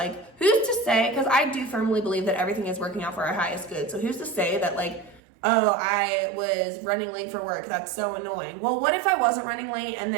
who's to say, because I do firmly believe that everything is working out for our highest good. So who's to say that like, oh, I was running late for work. That's so annoying. Well, what if I wasn't running late and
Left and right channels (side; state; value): left; drops out; at 5.2 s